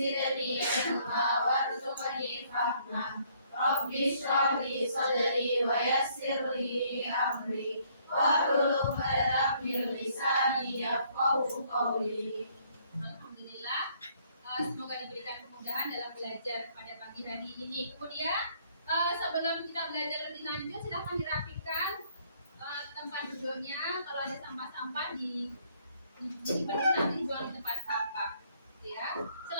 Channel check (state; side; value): inverted; both; correlation -0.65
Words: علما وارزقني فهما ربي اشرح لي صدري ويسر لي أمري واحلل عقدة من لساني يفقهوا قولي. Alhamdulillah, semoga diberikan kemudahan dalam belajar pada pagi hari ini. Kemudian sebelum kita belajar lebih lanjut, silahkan dirapikan tempat duduknya. Kalau ada sampah-sampah nanti dijual di tempat sampah. Ya.